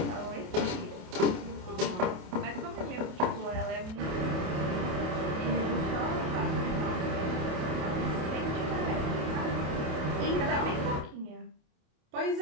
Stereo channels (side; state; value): left; late; 28 ms